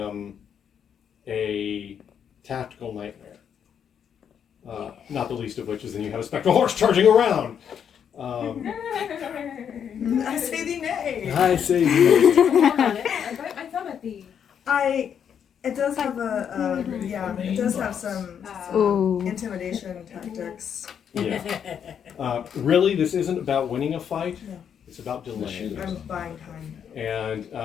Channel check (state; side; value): quieter; right; 8.1 dB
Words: a tactical nightmare. Not the least of which is then you have a spectral horse charging around. I say the nay. I say Hold on, I bite my thumb at the. It does have it does have some Ooh. intimidation tactics. yeah. Really, this isn't about winning a fight. No. It's about delaying. I'm buying time. And